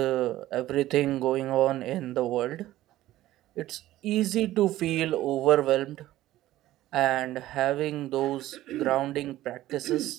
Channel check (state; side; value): quieter; left; 15.1 dB